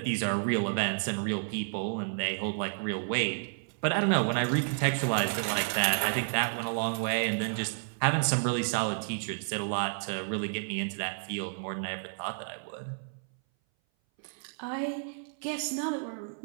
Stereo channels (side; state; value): left; silent; 57 dB below the other